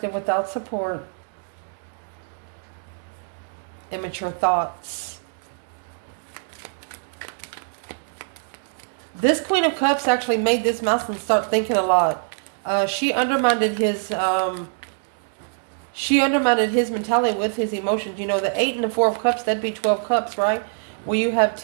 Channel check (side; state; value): left; silent; digital silence